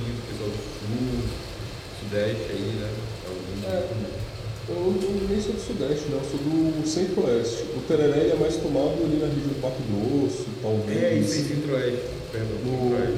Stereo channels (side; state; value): both; identical; correlation 1.00